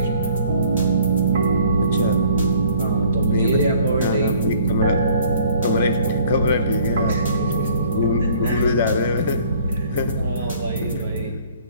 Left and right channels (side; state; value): both; inverted; correlation -0.56